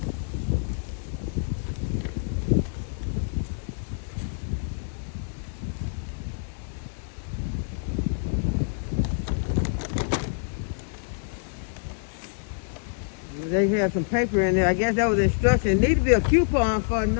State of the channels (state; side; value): silent; right; digital silence